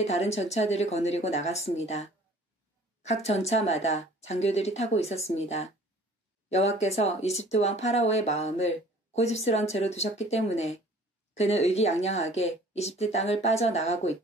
다른 전차들을 거느리고 나갔습니다. 각 전차마다 장교들이 타고 있었습니다. 여호와께서 이집트 왕 파라오의 마음을 고집스런 채로 두셨기 때문에 그는 의기양양하게 이집트 땅을 빠져나가고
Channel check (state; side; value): normal; both; correlation 0.50